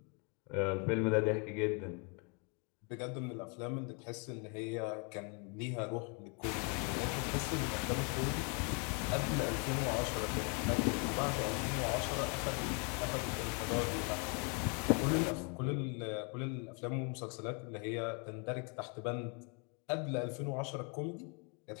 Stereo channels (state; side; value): quieter; right; 35.3 dB